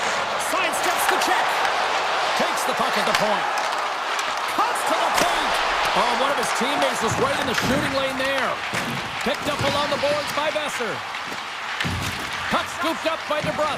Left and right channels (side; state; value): both; identical; correlation 1.00